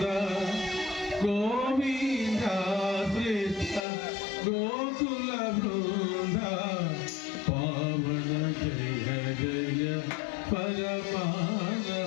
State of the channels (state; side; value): drops out; right; at 3.9 s